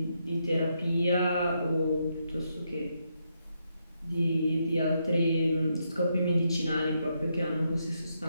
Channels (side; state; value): both; inverted; correlation -0.80